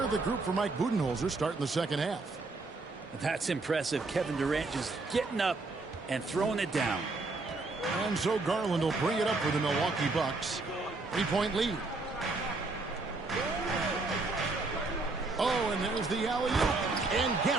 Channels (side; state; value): left; quieter; 3.5 dB